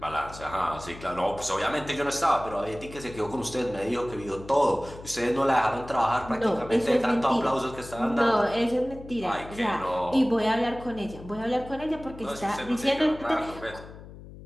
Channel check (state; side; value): noise; left; hum, 16 dB below the sound